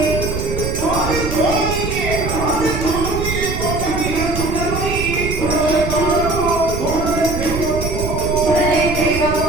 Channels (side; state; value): right; noise; rumble, 4 dB below the sound